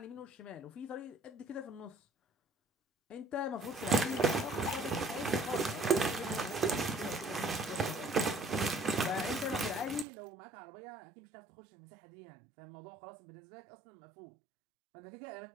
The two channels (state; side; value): drops out; left; at 10.1 s